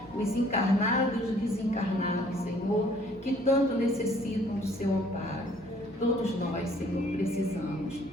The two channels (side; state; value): both; normal; correlation 0.59